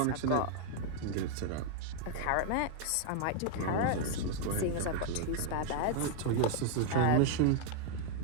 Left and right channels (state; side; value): different; both; correlation 0.00